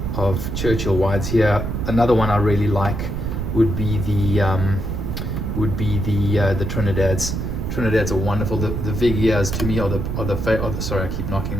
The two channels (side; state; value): right; noise; rumble, 3 dB below the sound